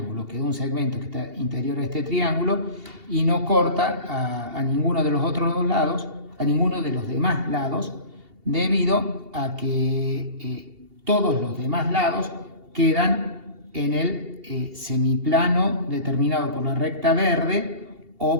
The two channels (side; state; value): left; late; 2.8 ms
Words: quedó un segmento que está interior a este triángulo y no corta a ninguno de los otros dos lados, a ninguno de los demás lados, debido a que todos los demás lados quedan en el semiplano determinado por la recta verde